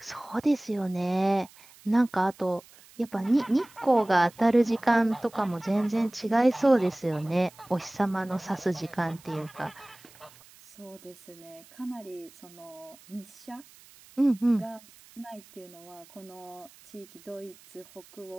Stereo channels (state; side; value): noise; right; hiss, 24 dB below the sound